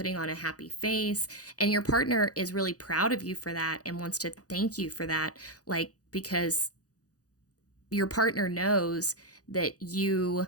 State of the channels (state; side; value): late; right; 0.67 ms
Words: on a happy face. And your partner is really proud of you for that and wants to thank you for that, like, because your partner knows that you